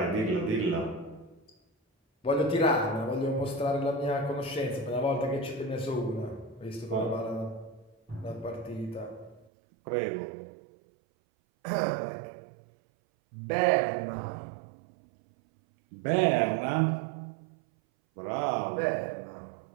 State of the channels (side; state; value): left; drops out; at 9.5 s